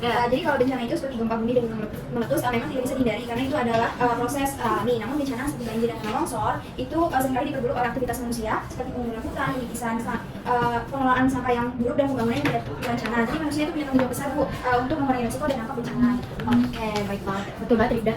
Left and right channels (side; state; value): both; identical; correlation 1.00